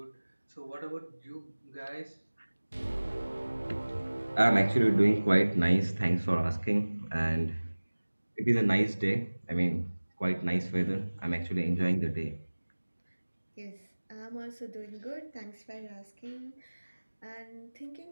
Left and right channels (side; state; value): both; inverted; correlation -1.00